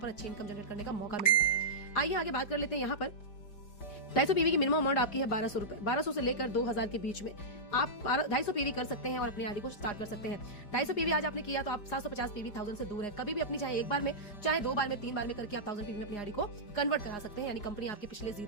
अच्छी इनकम जनरेट करने का मौका मिलता है। आइए आगे बात कर लेते हैं। यहाँ पर 250 PV की मिनिमम अमाउंट आपकी है 1200 रुपए। 1200 से लेकर 2000 के बीच में आप 250 PV कर सकते हैं और अपनी आईडी को स्टार्ट कर सकते हैं। 250 PV आज आपने किया तो आप 750 PV 1000 से दूर है। कभी भी अपनी चाहे एक बार में, चाहे 2 बार में, 3 बार में करके आप 1000 PV में अपनी आईडी को कन्वर्ट करा सकते हैं, यानी कंपनी आपके पिछले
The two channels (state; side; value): late; right; 5.0 ms